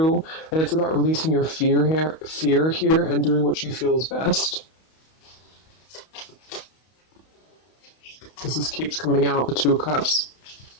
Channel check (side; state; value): right; late; 31 ms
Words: and it's about releasing your fear here and doing what you feel is best. Because this keeps coming out, the Two of Cups.